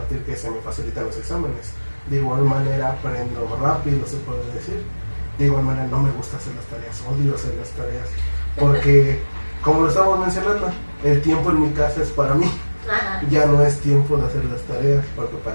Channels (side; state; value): both; inverted; correlation -1.00